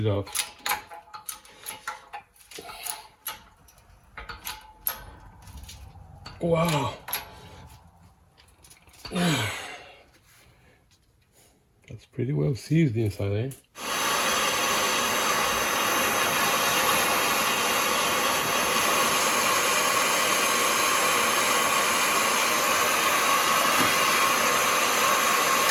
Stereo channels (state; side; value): identical; both; correlation 1.00